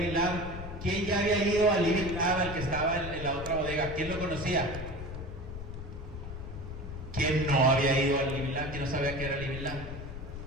Lab. ¿Quién ya había ido al Living Lab, al que estaba en la otra bodega? ¿Quién lo conocía? ¿Quién no había ido al Living Lab? ¿Quién no sabía que era el Living Lab?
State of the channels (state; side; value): noise; left; rumble, 9 dB below the sound